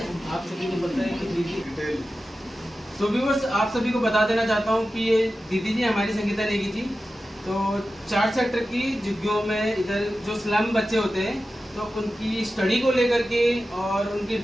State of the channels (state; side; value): normal; both; correlation 0.93